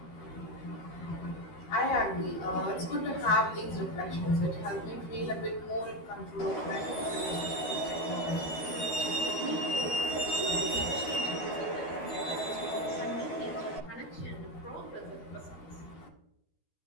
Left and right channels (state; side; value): late; right; 12 ms